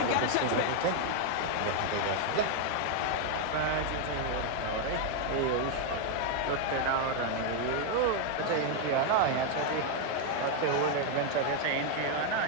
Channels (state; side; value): different; both; correlation 0.01